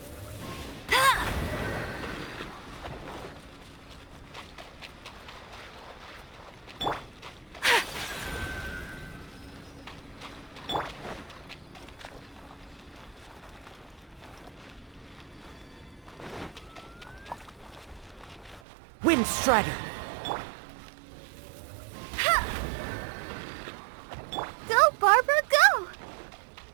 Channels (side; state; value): left; drops out; at 18.6 s